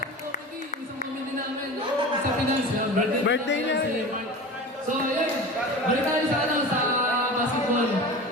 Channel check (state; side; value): normal; both; correlation 0.33